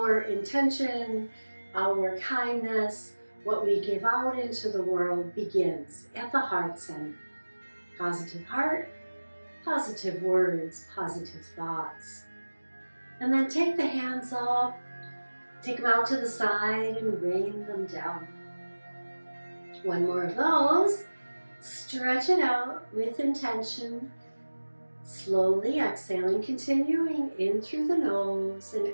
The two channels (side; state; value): both; inverted; correlation -1.00